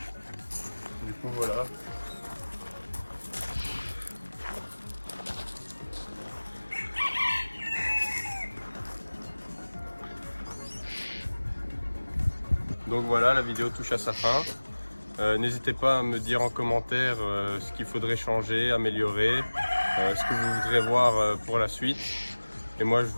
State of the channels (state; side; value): inverted; both; correlation -1.00